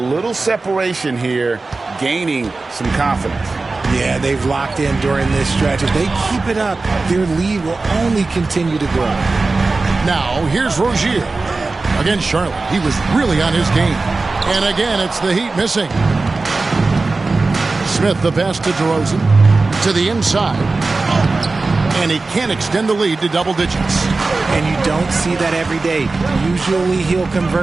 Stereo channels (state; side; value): quieter; left; 3.6 dB